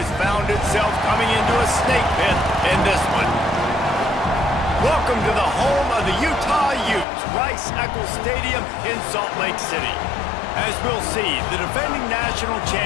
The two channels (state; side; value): drops out; right; at 7.1 s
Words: found itself coming into a snake pit in this one. Welcome to the home of the Utah Utes, Rice-Eccles Stadium in Salt Lake City. As we'll see, the defending national